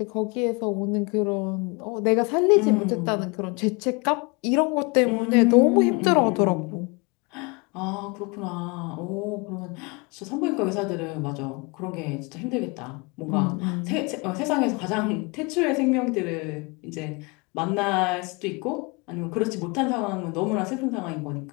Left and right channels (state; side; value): quieter; right; 29.3 dB